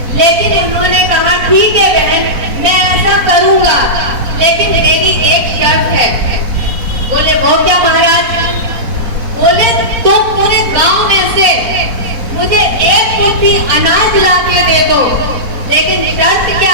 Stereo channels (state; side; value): late; left; 4.1 ms